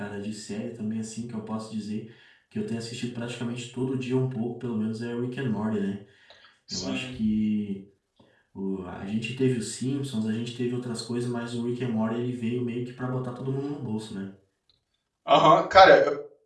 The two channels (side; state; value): both; identical; correlation 1.00